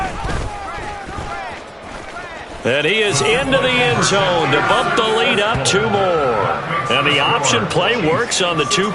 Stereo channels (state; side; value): identical; both; correlation 1.00